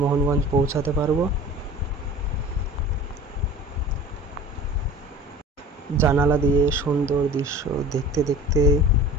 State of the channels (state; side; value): normal; both; correlation 0.41